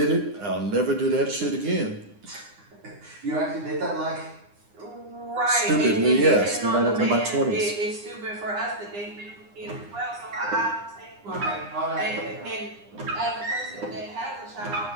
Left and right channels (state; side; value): late; left; 9.8 ms